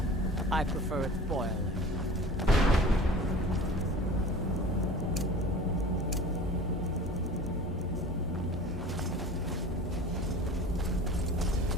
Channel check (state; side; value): normal; both; correlation 0.40